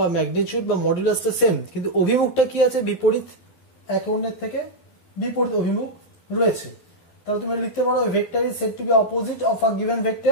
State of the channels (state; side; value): late; right; 11 ms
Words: ম্যাগনিটিউড বা মডুলাসটা সেম, কিন্তু অভিমুখটা কি আছে? বিপরীত, একে অন্যের থেকে বিপরীত অভিমুখ রয়েছে। তাহলে তুমি লিখতে পারো vector is said to be opposite of a given